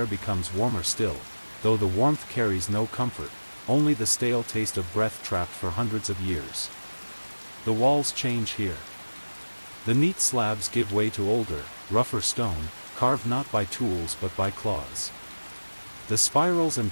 becomes warmer still, though the warmth carries no comfort, only the stale taste of breath trapped for hundreds of years. The walls change here. The neat slabs give way to older, rougher stone, carved not by tools but by claws. The spirals and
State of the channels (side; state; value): both; inverted; correlation -1.00